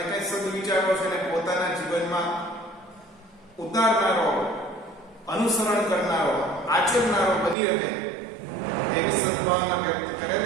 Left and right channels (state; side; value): drops out; left; at 7.6 s